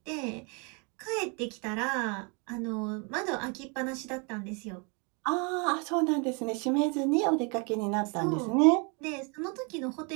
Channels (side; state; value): left; quieter; 33.4 dB